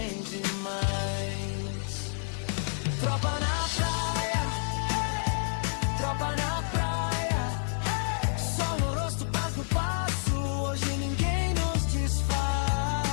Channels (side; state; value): right; silent; digital silence